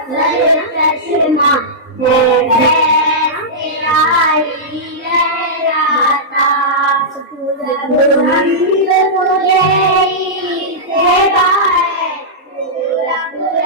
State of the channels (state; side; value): normal; both; correlation -0.13